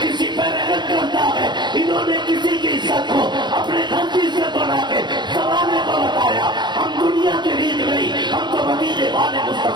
پہ رحمت کرتا ہے، انہوں نے کسی کی عزت کو اپنے گھر کی عزت بنا کے زمانے کو بتایا۔ ہم دنیا کی ریت نہیں، ہم تو مدینے والے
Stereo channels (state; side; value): late; left; 0.21 ms